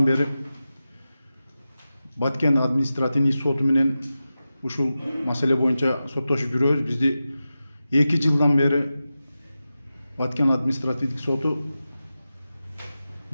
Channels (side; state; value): both; inverted; correlation -0.93